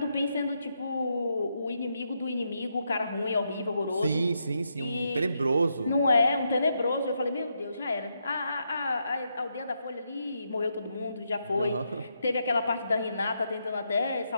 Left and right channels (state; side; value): inverted; both; correlation -0.80